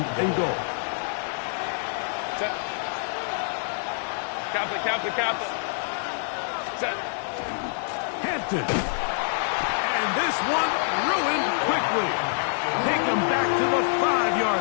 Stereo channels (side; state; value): right; silent; digital silence